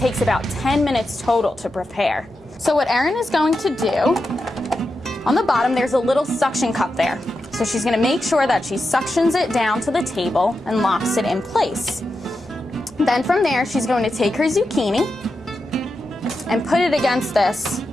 about 10 minutes total to prepare. So what Erin is going to do, on the bottom there's a little suction cup there. So she's gonna make sure that she suctions it down to the table and locks it in place. Then from there, she's going to take her zucchini and put it against this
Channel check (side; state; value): both; normal; correlation 0.89